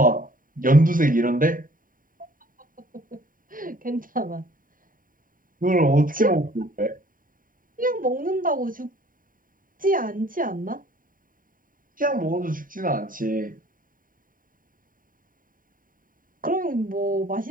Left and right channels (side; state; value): left; late; 0.40 ms